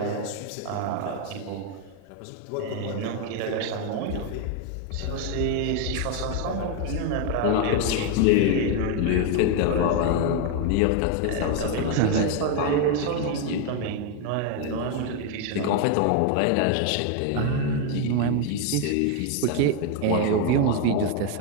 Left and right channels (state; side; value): different; both; correlation 0.01